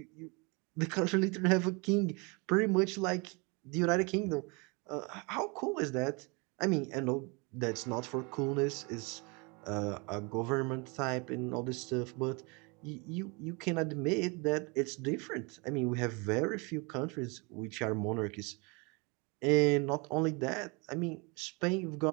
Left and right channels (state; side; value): quieter; left; 29.9 dB